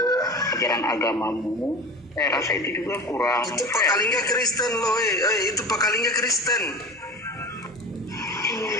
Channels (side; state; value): both; normal; correlation 0.34